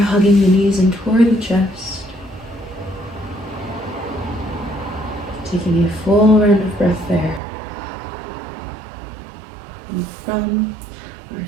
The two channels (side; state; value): left; drops out; at 7.4 s